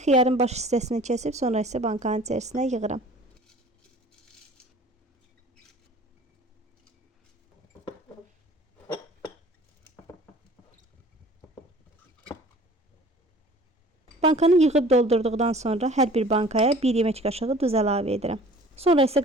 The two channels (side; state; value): both; normal; correlation 0.48